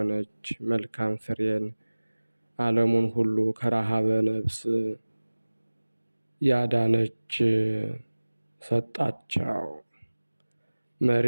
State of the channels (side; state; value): both; inverted; correlation -1.00